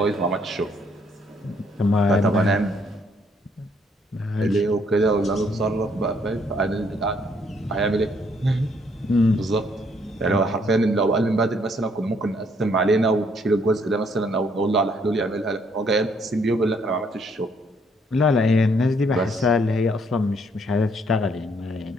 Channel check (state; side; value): normal; both; correlation 0.68